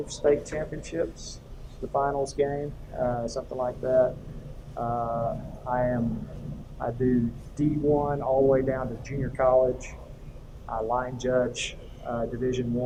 state championships, the finals game, something like that. I do D1 all the way down to junior college. I line judge Division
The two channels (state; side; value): identical; both; correlation 1.00